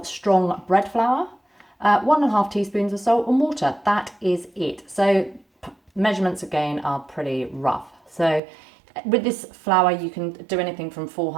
strong bread flour, 1.5 teaspoons of salt and water. That is it. So measurements again are pretty rough. So with this flour, you can do anything from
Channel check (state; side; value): drops out; left; at 8.4 s